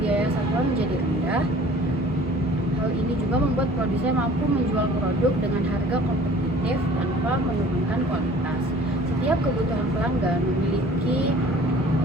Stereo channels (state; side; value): normal; both; correlation 0.49